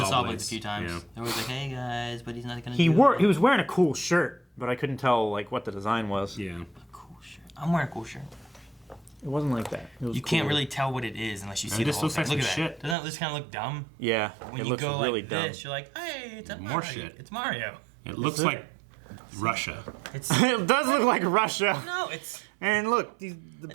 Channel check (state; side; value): drops out; left; at 13.0 s